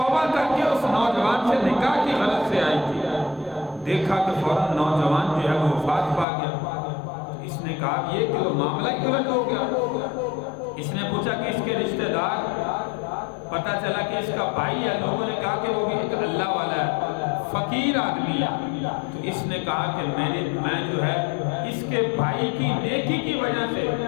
کر کے اس نوجوان سے نکاح کی غرض سے آئی تھی، دیکھا کہ فوراً نوجوان جو ہے وہ وفات پا گیا۔ اس نے کہا یہ کہ وہ معاملہ ہی الٹ ہو گیا۔ اس نے پوچھا کہ اس کے رشتہ دار، پتہ چلا کہ اس کا بھائی ہے۔ لوگوں نے کہا کہ وہ بھی ایک اللہ والا ہے، فقیر آدمی ہے۔ تو اس نے کہا کہ میں جو ہے اس کے بھائی کی نیکی کی وجہ سے،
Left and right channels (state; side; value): drops out; right; at 6.2 s